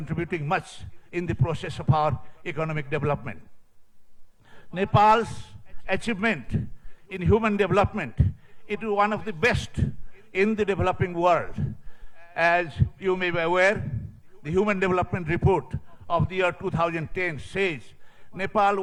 much in the process of our economic development. Nepal's achievement in human development, it is one of the best in the developing world. As you may be aware, the Human Development Report of the year 2010 says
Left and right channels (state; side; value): identical; both; correlation 1.00